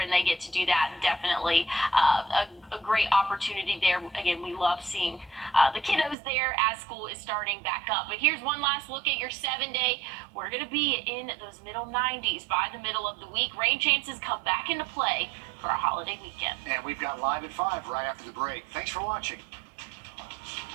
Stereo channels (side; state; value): left; drops out; at 6.2 s